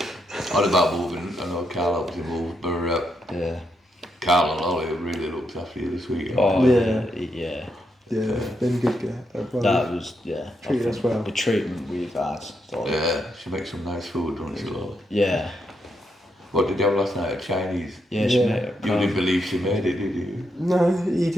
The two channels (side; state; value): both; normal; correlation 0.81